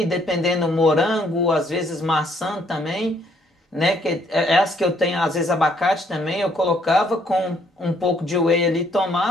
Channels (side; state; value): both; normal; correlation 0.67